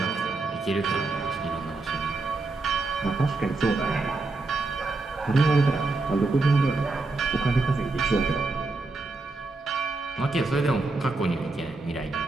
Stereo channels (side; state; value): left; quieter; 3.4 dB